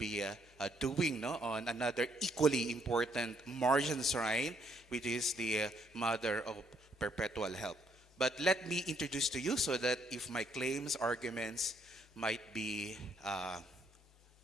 doing, no, on another equally important Marian shrine, which is the Mother of Perpetual Help. But let me introduce to you so that if my claims, arguments might be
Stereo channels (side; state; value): both; normal; correlation 0.70